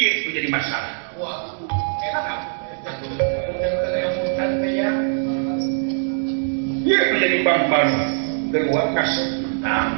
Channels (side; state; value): left; silent; digital silence